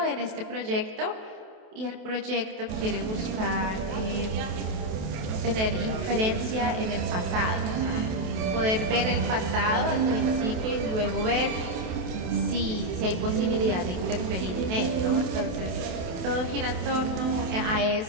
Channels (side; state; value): left; late; 28 ms